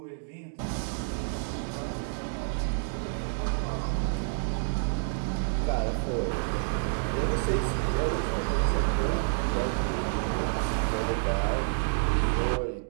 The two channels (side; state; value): left; silent; digital silence